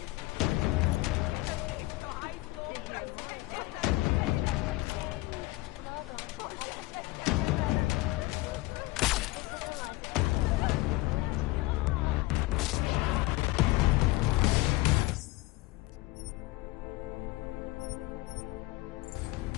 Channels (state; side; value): quieter; right; 20.2 dB